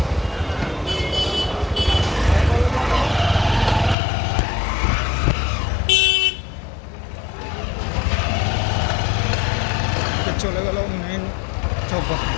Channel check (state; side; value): drops out; right; at 4.0 s